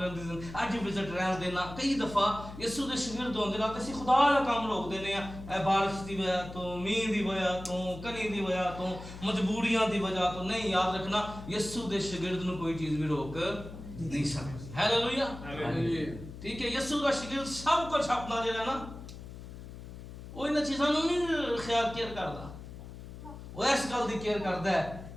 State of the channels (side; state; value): left; noise; hum, 13 dB below the sound